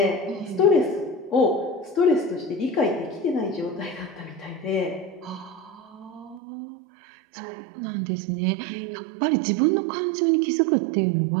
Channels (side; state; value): left; drops out; at 6.4 s